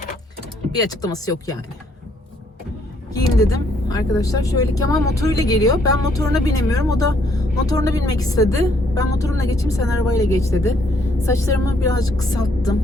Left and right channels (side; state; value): both; normal; correlation 0.68